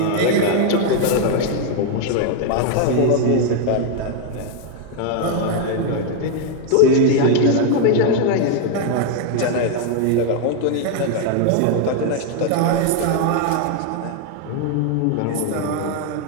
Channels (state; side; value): different; both; correlation 0.01